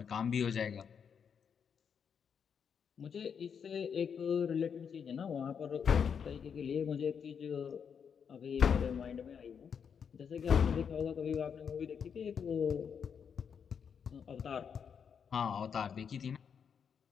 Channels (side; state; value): right; quieter; 7.0 dB